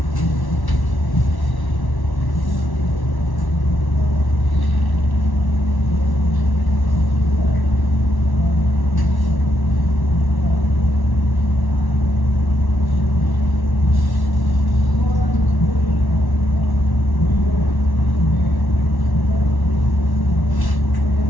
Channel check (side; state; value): right; late; 1.1 ms